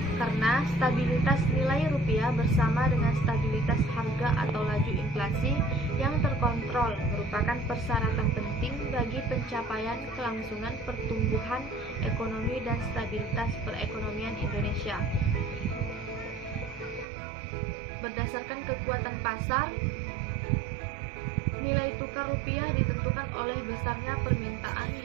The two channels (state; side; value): drops out; left; at 17.1 s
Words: Karena stabilitas nilai rupiah bersama dengan stabilitas harga atau laju inflasi yang terkontrol merupakan persyaratan penting bagi pencapaian kelangsungan pertumbuhan ekonomi dan stabilitas perekonomian Indonesia. Berdasarkan kekuatan pasar, nilai tukar rupiah ditentukan oleh besarnya permintaan